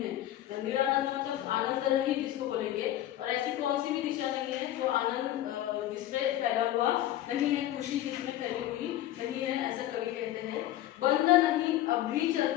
है। निरानंद मतलब आनंद रहित जिसको बोलेंगे, और ऐसी कौन सी भी दिशा नहीं है जो आनंद जिसमें फैला हुआ नहीं है, खुशी जिसमें फैली हुई नहीं है, ऐसा कवि कहते हैं। बंद नहीं अब भी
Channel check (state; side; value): quieter; right; 13.5 dB